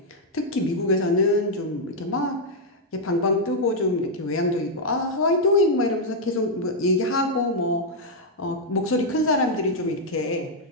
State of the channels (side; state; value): both; normal; correlation -0.02